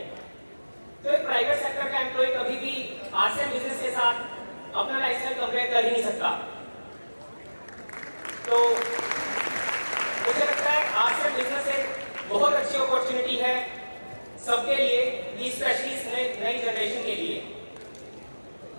तो एक प्राइवेट सेक्टर का एम्प्लॉय कभी भी RCM बिजनेस के साथ अपना लाइफस्टाइल कंपेयर कर ही नहीं सकता। तो मुझे लगता है RCM बिजनेस एक बहुत अच्छी अपॉर्चुनिटी है सबके लिए, स्पेशली नई जनरेशन के लिए।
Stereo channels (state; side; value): inverted; both; correlation -1.00